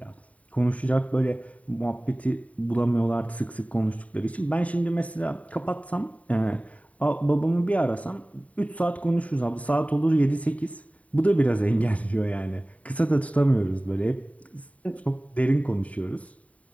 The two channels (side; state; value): right; late; 0.068 ms